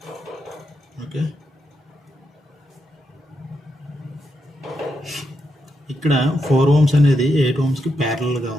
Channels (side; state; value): both; normal; correlation 0.83